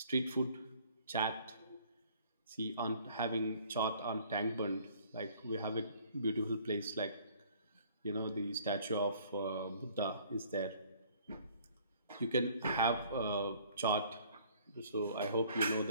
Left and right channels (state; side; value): inverted; both; correlation -0.57